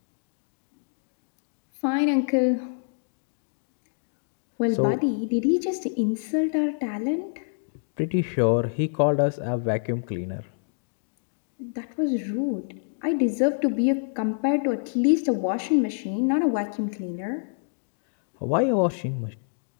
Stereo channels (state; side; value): silent; right; digital silence